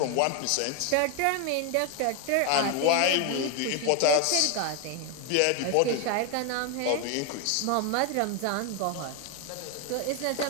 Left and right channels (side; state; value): both; different; correlation 0.01